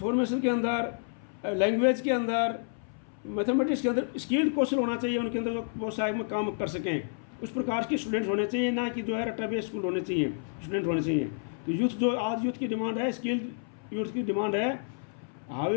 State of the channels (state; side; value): silent; right; 58 dB below the other